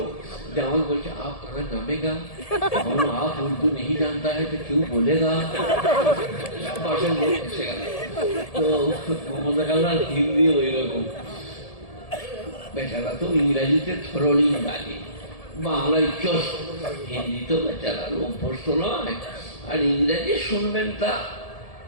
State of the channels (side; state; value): right; late; 1.7 ms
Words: যে আমাকে বলছে আপ কাহা নামেগা, আপ উর্দু নেই জানতা है तो क्यों बोलेगा, বাসের লোক এসে গেল। তো মমতা খালার হিন্দি ওই রকম, বেচারা তো ইংরাজিতে থরলি গালি, বাংলায় চোষ, হিন্দি তো বেচারা অভ্যস্ত নয়, আর ইংরেজি শুনবেন তা